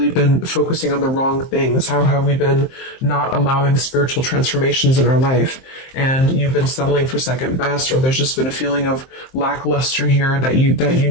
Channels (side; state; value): right; late; 23 ms